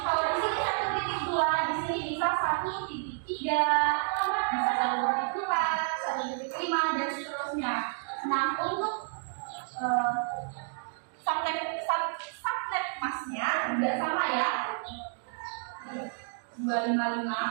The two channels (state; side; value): silent; left; digital silence